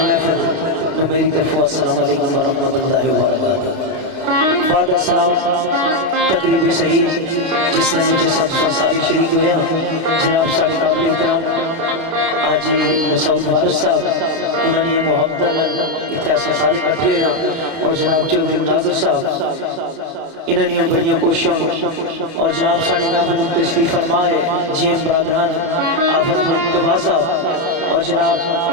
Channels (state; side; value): late; left; 30 ms